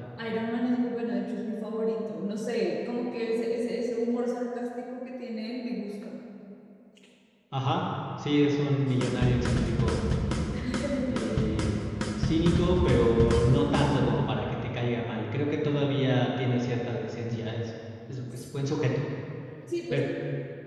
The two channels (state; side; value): identical; both; correlation 1.00